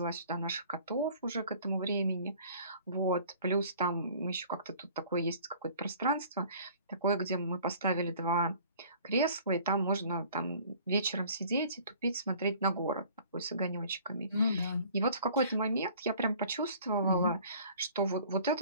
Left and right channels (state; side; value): inverted; both; correlation -0.51